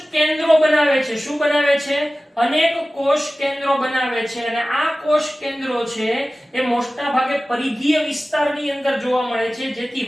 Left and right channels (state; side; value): normal; both; correlation 0.96